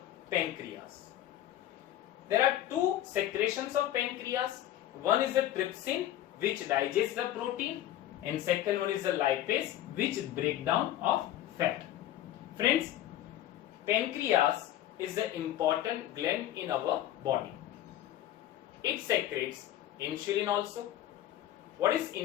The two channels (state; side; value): quieter; right; 12.9 dB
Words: pancreas. There are two secretions of pancreas. One is the trypsin, which digests the protein, and second one is the lipase, which break down of fat. Friends, pancreas is the important gland in our body. It secretes insulin also. What is